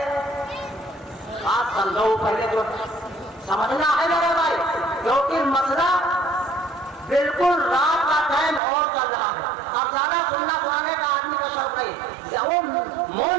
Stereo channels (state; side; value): drops out; left; at 8.6 s